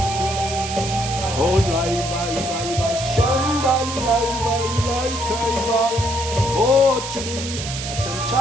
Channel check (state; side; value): noise; right; hiss, 7 dB below the sound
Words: 올라이바이바이바 샨달라이발라이카이바 오 주님